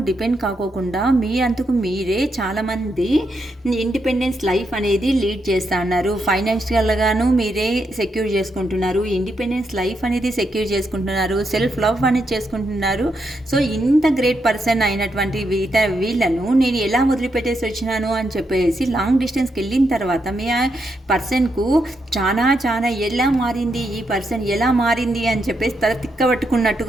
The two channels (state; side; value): normal; both; correlation 0.81